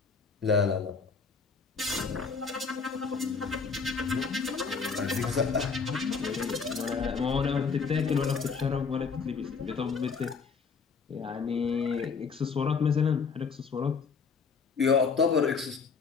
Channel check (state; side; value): quieter; right; 5.3 dB